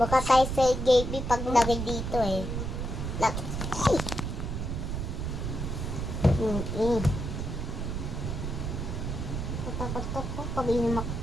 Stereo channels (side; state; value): right; noise; rumble, 3 dB below the sound